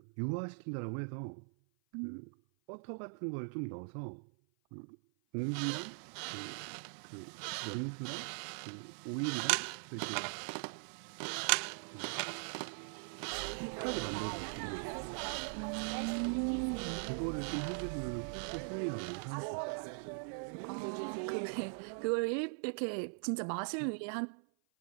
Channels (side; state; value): left; silent; 51 dB below the other